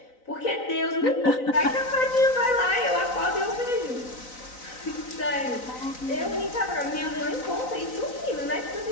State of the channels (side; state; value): right; late; 3.9 ms